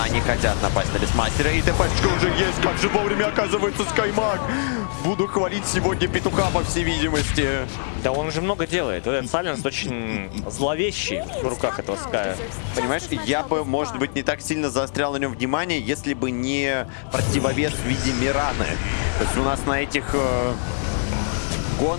они хотят напасть на Бестмастера. И ТПшка уже есть. Как же вовремя оказывается Скаймаг. буду хвалить сегодня петуха, по всей видимости. Да он уже много делает. Вот этот Сайленс очень зловещий в руках этого Ская. Понимаешь, я бы, может быть, не так сильно заострял на нем внимание, если бы не противовес в виде Мираны. То есть у нас на этих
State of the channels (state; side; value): silent; right; digital silence